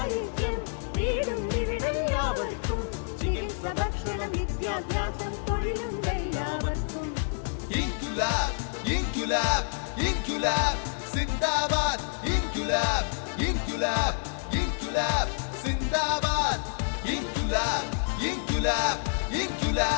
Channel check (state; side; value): silent; right; 57 dB below the other